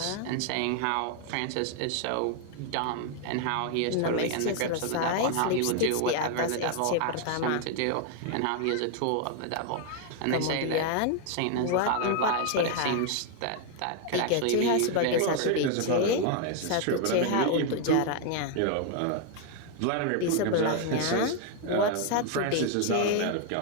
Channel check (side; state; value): both; different; correlation 0.01